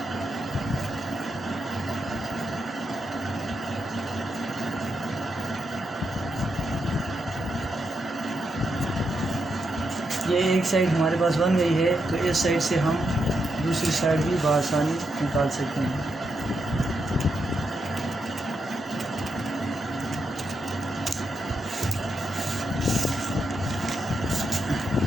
ये एक साइड हमारे पास बन गई है तो इस साइड से हम दूसरी साइड भी बआसानी निकाल सकते हैं।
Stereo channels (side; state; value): both; normal; correlation 0.83